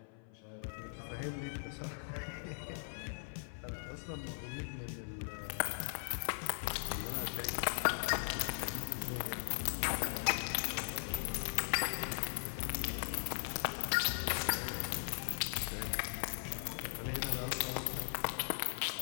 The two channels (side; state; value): right; silent; 52 dB below the other